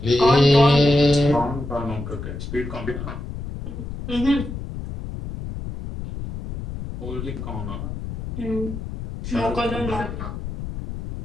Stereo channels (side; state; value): left; noise; rumble, 8 dB below the sound